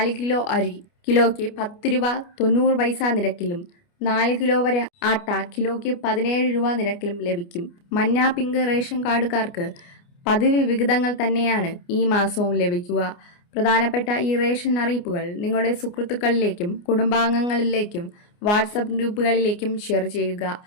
കിലോ അരി കിലോയ്ക്ക് 10 രൂപ 90 പൈസ നിരക്കിലും 4 കിലോ വരെ ആട്ട കിലോയ്ക്ക് 17 രൂപ നിരക്കിലും ലഭിക്കും. മഞ്ഞ, പിങ്ക് റേഷൻ കാർഡുകാർക്ക് പതിവ് വിഹിതങ്ങൾ തന്നെയാണ് ഈ മാസവും ലഭിക്കുക. പ്രധാനപ്പെട്ട ഈ റേഷൻ അറിയിപ്പുകൾ നിങ്ങളുടെ സുഹൃത്തുക്കളിലേക്കും കുടുംബാംഗങ്ങളിലേക്കും വാട്സപ്പ് ഗ്രൂപ്പുകളിലേക്കും ഷെയർ ചെയ്യുക.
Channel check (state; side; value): late; right; 29 ms